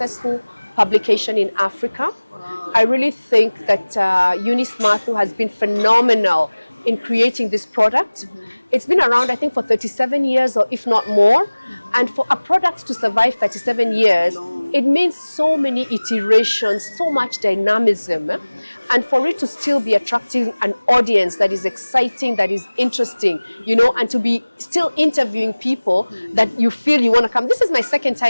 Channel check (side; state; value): both; inverted; correlation -1.00